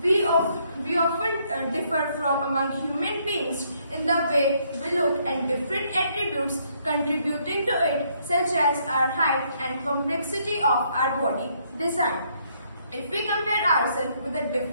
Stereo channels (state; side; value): inverted; both; correlation -0.70